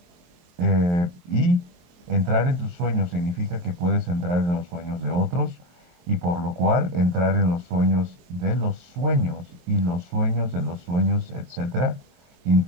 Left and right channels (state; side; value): late; left; 23 ms